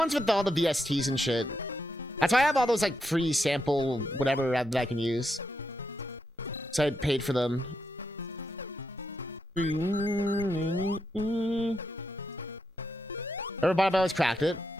with all the VSTs and shit. That's why I have all those like free sample whatever that I can use. So I paid for them. Everybody always cracked it.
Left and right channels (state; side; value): normal; both; correlation 0.82